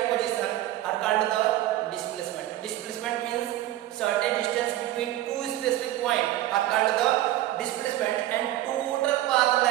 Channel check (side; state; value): left; quieter; 14.6 dB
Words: position are called the displacement. Displacement means shortest distance between two specific point are called the displacement, and total path